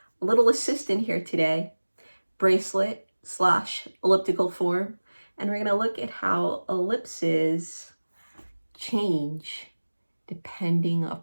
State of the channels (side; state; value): both; inverted; correlation -1.00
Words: assistant here today, bracelet / elliptical form, and we're going to look at how ellipses change depending